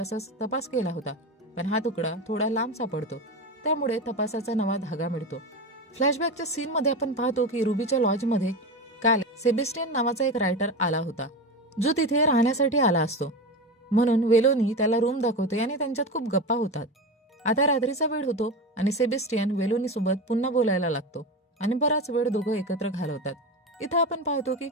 तपास केला होता, पण हा तुकडा थोडा लांब सापडतो, त्यामुळे तपासाचा नवा धागा मिळतो. फ्लॅशबॅकच्या सीनमध्ये आपण पाहतो की रुबीच्या लॉजमध्ये काल सेबेस्टियन नावाचा एक रायटर आला होता, जो तिथे राहण्यासाठी आला असतो. म्हणून वेलोनी त्याला रूम दाखवते आणि त्यांच्यात खूप गप्पा होतात. आता रात्रीचा वेळ होतो आणि सेबेस्टियन वेलोनी सोबत पुन्हा बोलायला लागतो आणि बराच वेळ दोघं एकत्र घालवतात. इथं आपण पाहतो की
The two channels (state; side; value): normal; both; correlation 0.22